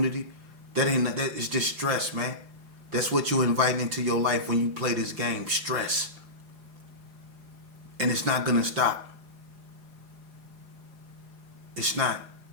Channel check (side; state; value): left; late; 4.9 ms